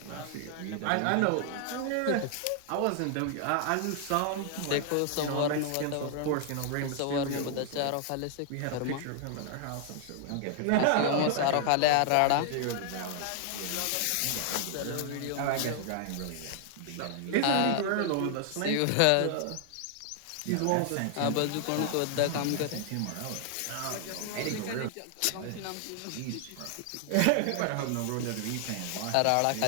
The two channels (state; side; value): different; both; correlation 0.00